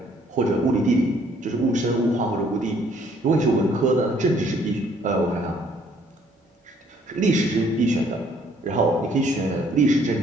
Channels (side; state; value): both; normal; correlation 0.63